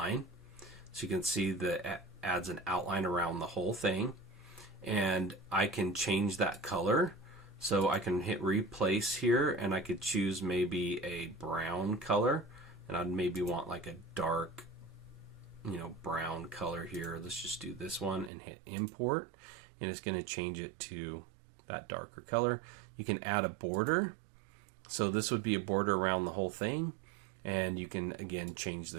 So you can see that it adds an outline around the whole thing. And I can change that color. So I can hit replace here, and I could choose maybe a brown color. And I'd maybe want like a dark, brown color here. Let's just do this one and hit import. And it's going to change it to that darker color. You can add a border. So this would be a border around the whole thing. And you can, again, change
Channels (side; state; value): left; drops out; at 18.3 s